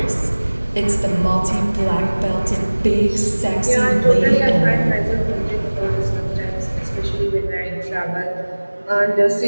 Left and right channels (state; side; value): inverted; both; correlation -1.00